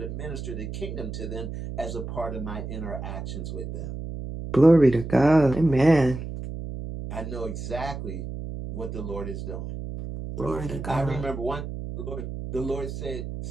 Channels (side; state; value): right; noise; hum, 7 dB below the sound